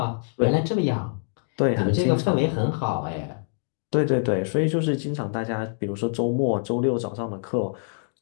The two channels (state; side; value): silent; right; digital silence